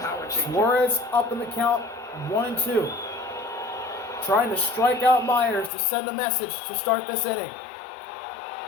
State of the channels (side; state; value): right; drops out; at 5.7 s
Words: change. Suarez up in the count, 1 and 2. Trying to strike out Myers to send a message to start this inning.